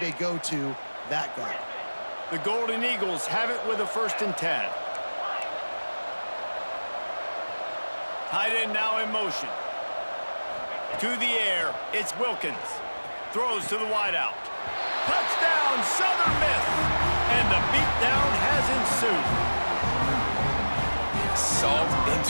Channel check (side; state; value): both; inverted; correlation -1.00